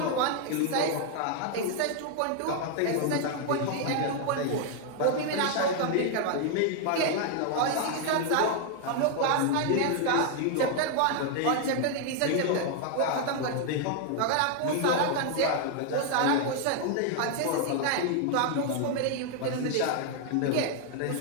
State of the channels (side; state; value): both; different; correlation 0.00